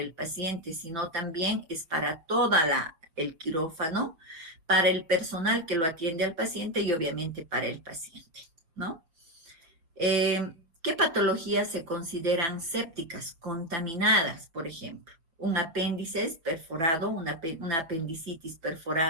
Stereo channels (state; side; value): late; left; 6.0 ms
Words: paciente, sino también es para toda el quirófano, para el personal que lo atiende al paciente y obviamente para el paciente, ¿no? ¿Qué patologías se consideran sépticas, contaminadas, por ejemplo? Un apéndice perforado, una apendicitis